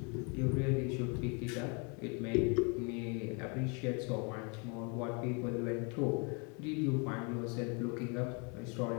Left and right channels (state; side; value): quieter; right; 34.0 dB